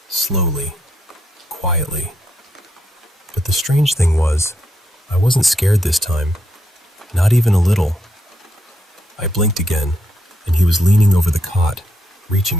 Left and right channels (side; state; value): both; normal; correlation 0.79